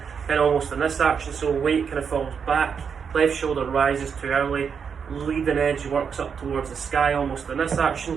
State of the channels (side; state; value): left; quieter; 6.6 dB